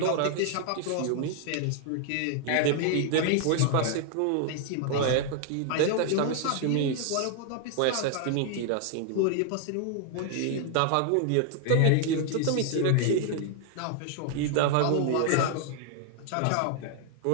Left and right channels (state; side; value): different; both; correlation 0.00